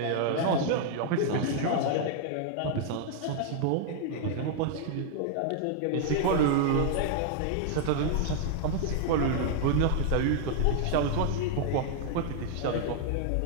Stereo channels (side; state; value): both; different; correlation 0.00